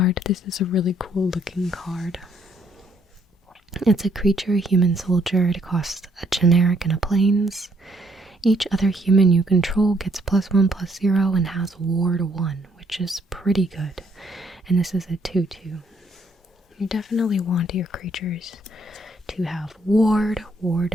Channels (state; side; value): normal; both; correlation 0.69